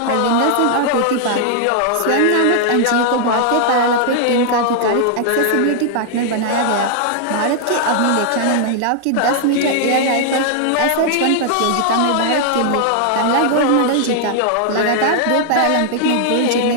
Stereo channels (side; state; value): both; different; correlation -0.01